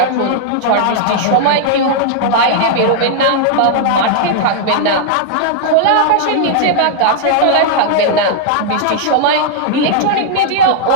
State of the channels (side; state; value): both; different; correlation -0.01